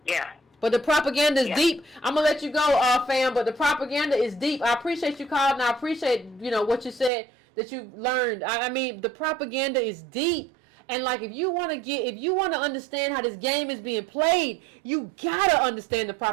Yeah. But the propaganda is deep. I'm gonna let you go, fam. But the propaganda is deep. I appreciate you calling, and I appreciate what you said that you learned. I mean, the propaganda is deep. And like, if you want to understand how this game is being played, you gotta understand the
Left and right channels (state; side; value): drops out; left; at 7.1 s